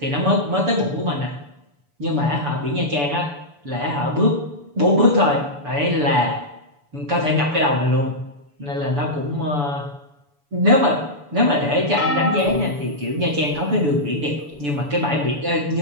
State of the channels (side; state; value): left; late; 7.0 ms